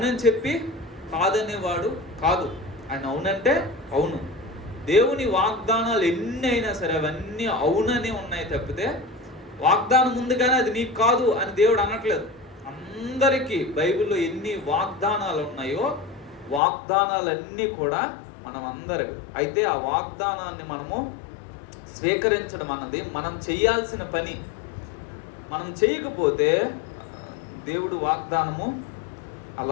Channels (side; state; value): right; drops out; at 16.6 s